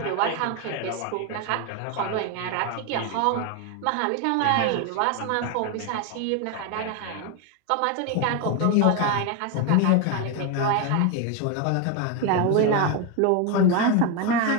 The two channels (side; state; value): both; different; correlation 0.01